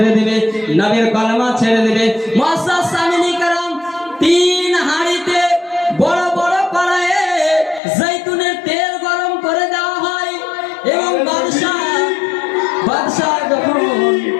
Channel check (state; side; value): drops out; right; at 7.8 s